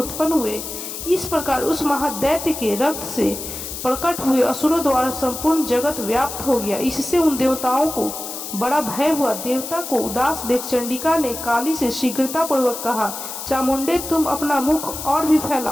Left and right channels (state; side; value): noise; left; hiss, 8 dB below the sound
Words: हुए। इस प्रकार उस महादैत्य के रक्त से प्रकट हुए असुरों द्वारा संपूर्ण जगत व्याप्त हो गया। इससे उन देवताओं को बड़ा भय हुआ। देवता को उदास देख चंडिका ने काली से शीघ्रता पूर्वक कहा, चामुंडे, तुम अपना मुख और भी